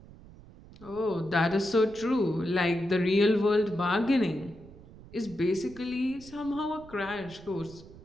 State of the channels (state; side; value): noise; right; rumble, 20 dB below the sound